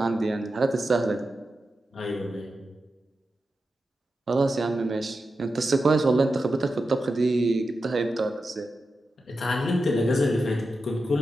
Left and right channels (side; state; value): both; normal; correlation 0.90